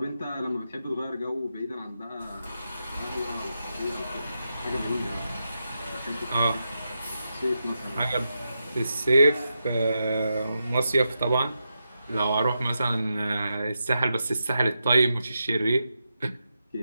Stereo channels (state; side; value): inverted; both; correlation -0.87